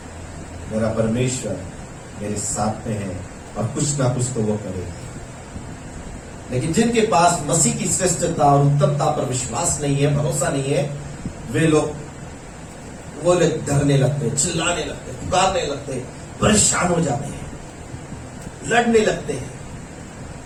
मेरा परमेश्वर मेरे साथ में है और कुछ ना कुछ तो वो करेगा। लेकिन जिनके पास मसीह की श्रेष्ठता और उत्तमता पर विश्वास नहीं है, भरोसा नहीं है, वे लोग डरने लगते, चिल्लाने लगते, पुकारने लगते, परेशान हो जाते हैं, लड़ने लगते हैं,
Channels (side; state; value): both; identical; correlation 1.00